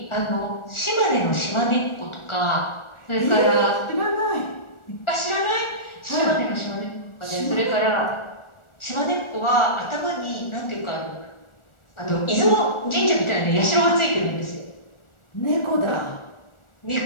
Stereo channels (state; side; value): late; right; 1.4 ms